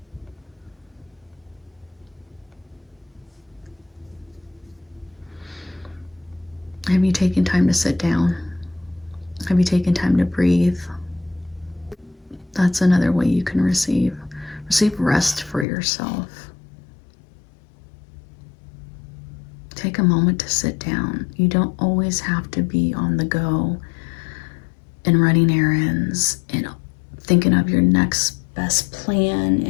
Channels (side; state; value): right; drops out; at 15.7 s